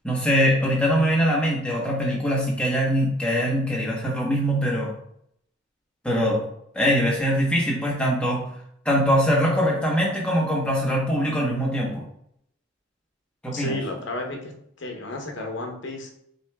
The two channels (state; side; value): normal; both; correlation 0.55